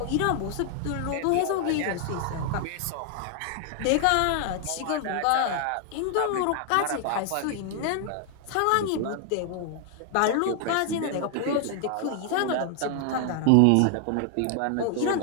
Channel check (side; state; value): both; different; correlation 0.00